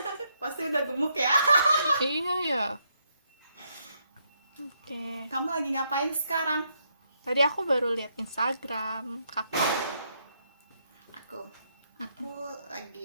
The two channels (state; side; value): inverted; both; correlation -0.76